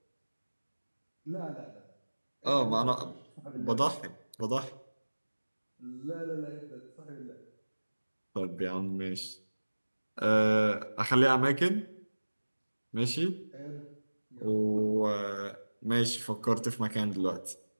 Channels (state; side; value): inverted; both; correlation -1.00